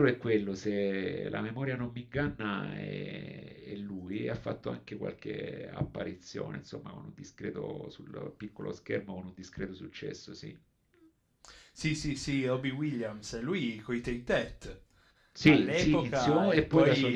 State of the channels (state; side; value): identical; both; correlation 1.00